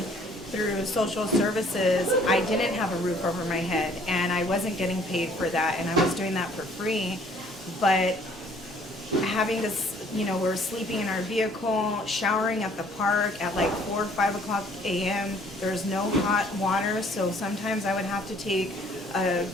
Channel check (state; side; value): normal; both; correlation 0.58